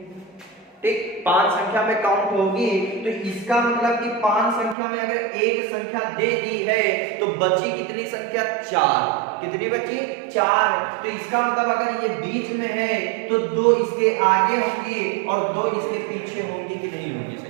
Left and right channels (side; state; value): left; drops out; at 4.8 s